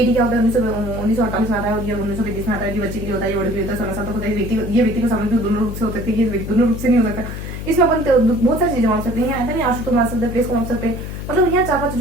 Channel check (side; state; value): left; noise; hum, 7 dB below the sound